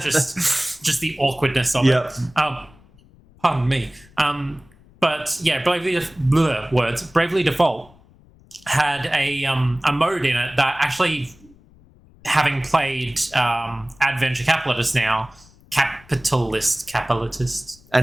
the awkwardness of it. Pardon me. But yeah, Bravely Default had a mode in it that actually, having played Adventure Capitalist now, Capitalist. I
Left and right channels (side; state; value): left; noise; rumble, 27 dB below the sound